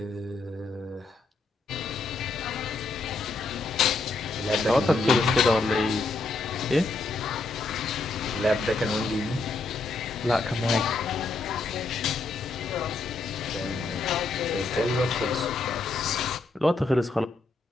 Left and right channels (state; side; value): quieter; right; 3.4 dB